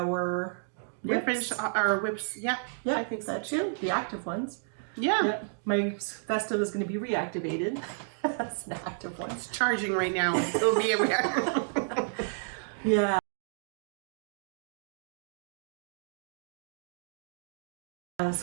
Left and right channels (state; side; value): silent; left; digital silence